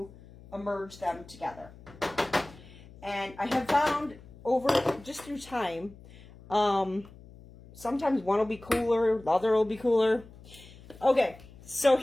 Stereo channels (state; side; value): noise; left; hum, 21 dB below the sound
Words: immerse them together. And I have found over, just through time, sometimes one will be cooler, the other will be cooler. Okay, so